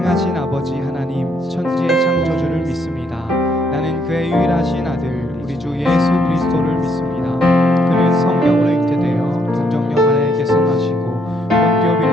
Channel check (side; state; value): both; normal; correlation 0.72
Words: 아버지 하나님, 천지의 창조주를 믿습니다. 나는 그의 유일하신 아들 우리 주 예수 그리스도를 믿습니다. 그는 성령으로 잉태되어 동정녀 마리아에게 선하시고 본디오